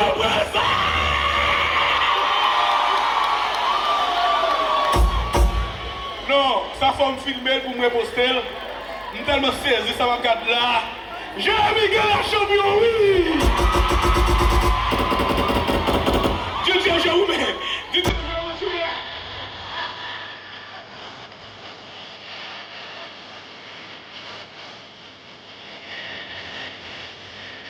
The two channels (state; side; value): identical; both; correlation 1.00